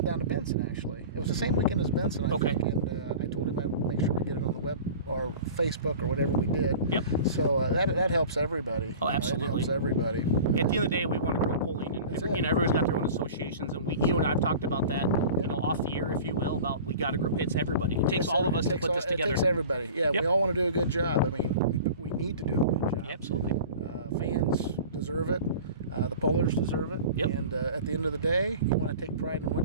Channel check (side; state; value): both; inverted; correlation -0.39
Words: down to Benson, actually. It was the same weekend as Benson, I think. And I told him I'd make sure we get it on the web or Facebook or whatever we did. Yep. So that helps everybody. Oh, absolutely. It helps everybody. At the end of the day, we want to grow polling, and everybody's got their own associations, and and I've talked about that, off the air, if you will, about we got to grow. It's everybody. It takes all of us to put this together. It takes everybody. Yeah, Yep. we all want to do a good job. I mean, we need to do a good job. Absolutely. Fans deserve it. The pollers deserve it. Yep. And at the end of the day, you want to take pride in